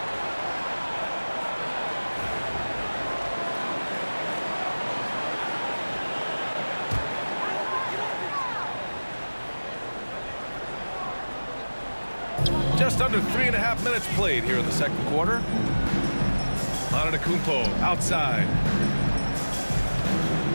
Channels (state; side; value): inverted; both; correlation -1.00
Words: Just under 3.5 minutes played here in the second quarter. Antetokounmpo outside.